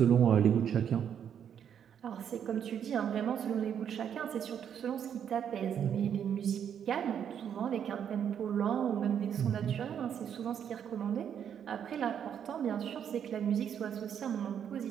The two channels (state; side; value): quieter; left; 8.6 dB